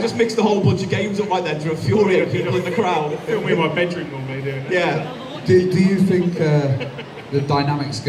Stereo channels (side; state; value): both; identical; correlation 1.00